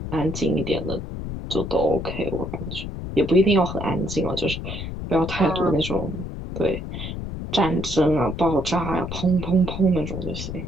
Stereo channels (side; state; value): left; noise; rumble, 7 dB below the sound